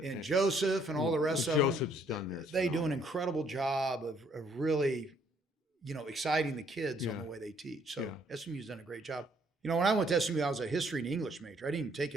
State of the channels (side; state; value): both; normal; correlation 0.66